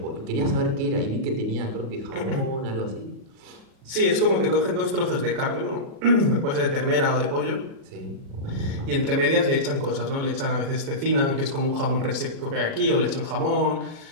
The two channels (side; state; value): left; late; 36 ms